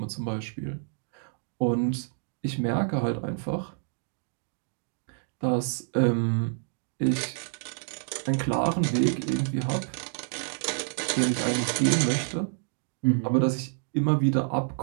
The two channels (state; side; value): silent; left; digital silence